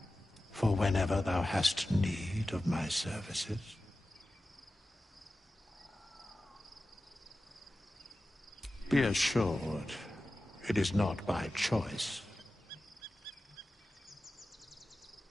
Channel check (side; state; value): both; normal; correlation 0.94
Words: for whenever thou hast need of my services. Be assured, it is not by choice.